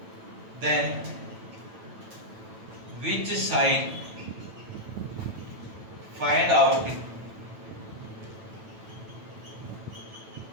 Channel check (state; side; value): late; left; 9.0 ms